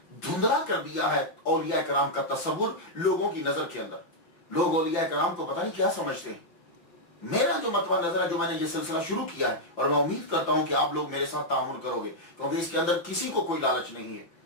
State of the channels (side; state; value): right; late; 5.8 ms